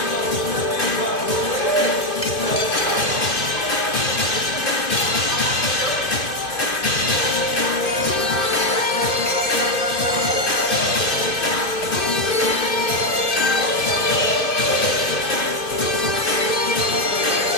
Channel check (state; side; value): late; right; 2.6 ms